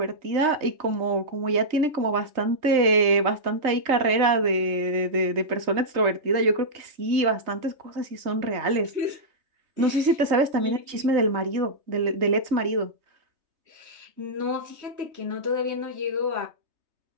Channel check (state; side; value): late; left; 3.2 ms